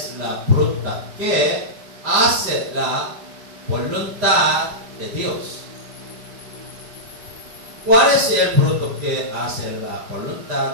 la fruta que hace la voluntad de Dios. ¿Cuál es el fruto que hace la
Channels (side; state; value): left; late; 4.9 ms